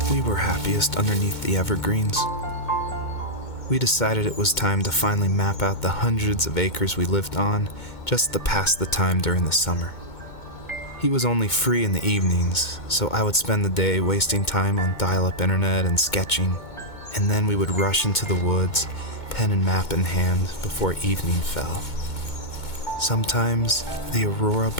We were happiest underneath the evergreens. We decided it was time to finally map out the hundreds of acres we lived on just to pass the time during the summer. He was only free in the evenings, so I would spend the day wasting time on dial-up internet and sketching, and then we would rush into the woods, pen and map in hand, before evening fell. Sometimes, the aurora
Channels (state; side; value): late; right; 2.2 ms